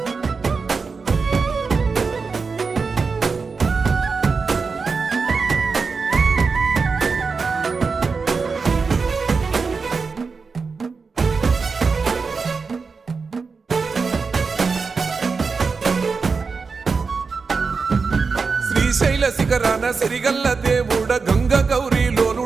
శ్రీశైల శిఖరాన సిరిగల్ల దేవుడ గంగ గౌరీ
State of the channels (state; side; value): quieter; left; 4.8 dB